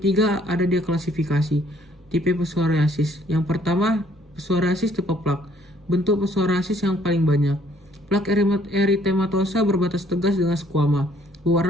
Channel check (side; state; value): both; normal; correlation 0.63